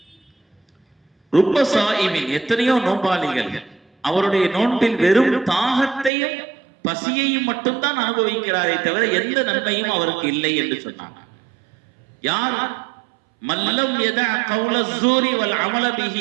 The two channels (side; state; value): left; drops out; at 6.1 s